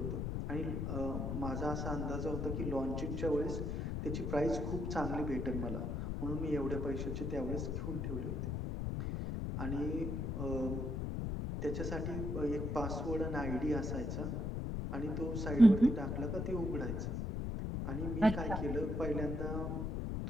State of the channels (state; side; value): noise; left; rumble, 1 dB below the sound